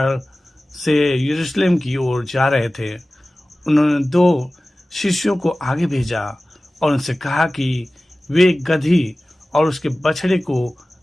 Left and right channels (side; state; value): both; normal; correlation 0.97